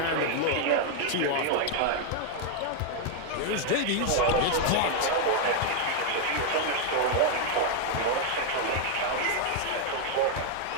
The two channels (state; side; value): different; both; correlation 0.00